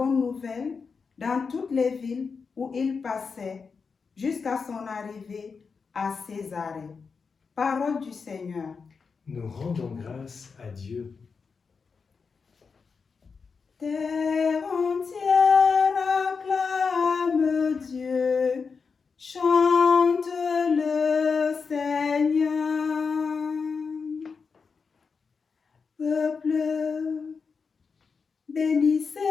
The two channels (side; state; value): right; quieter; 5.2 dB